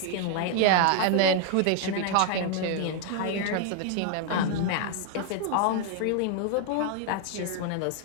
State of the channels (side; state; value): both; different; correlation 0.00